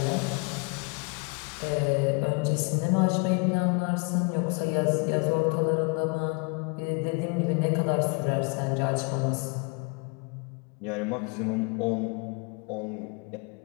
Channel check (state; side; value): quieter; right; 33.3 dB